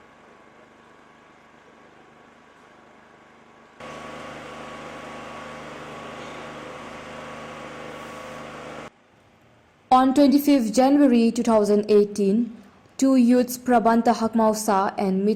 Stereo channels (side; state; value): both; identical; correlation 1.00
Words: On 25th January 2018, two youths, Prabanta Hakmausa and